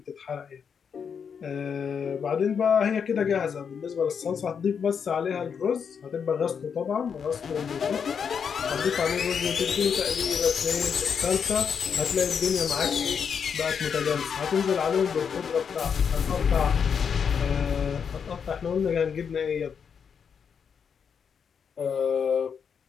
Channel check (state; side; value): quieter; right; 6.8 dB